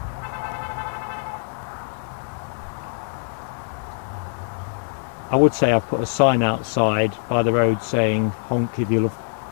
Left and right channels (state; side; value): silent; right; digital silence